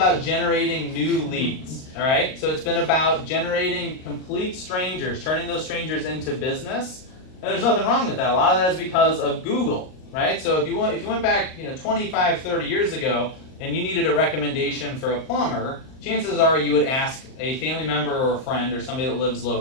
generating new leads, all right? So it's been about generating complete strangers, turning those strangers into business, and there's nothing wrong with that. A lot of that is because of Google, right? So if you went back 25, 30 years ago, and you needed a recommendation for a plumber, chances are you would ask a family member or a friend or somebody that lives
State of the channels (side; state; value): right; late; 38 ms